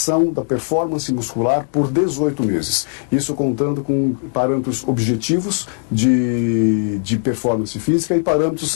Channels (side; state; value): right; silent; 61 dB below the other